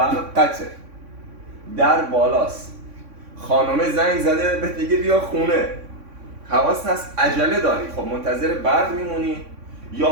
در بالاست، خانومه زنگ زده به دیگه بیا خونه، حواست هست عجله داری، خب منتظر برق میمونی یا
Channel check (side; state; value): left; late; 3.6 ms